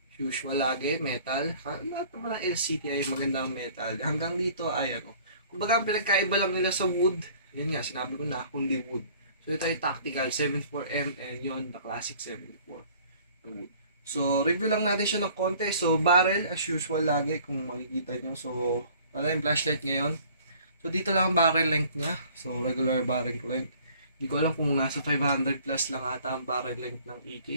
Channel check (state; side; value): inverted; both; correlation -0.53